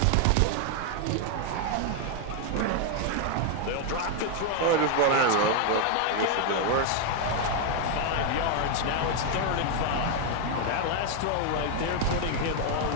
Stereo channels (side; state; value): both; different; correlation 0.00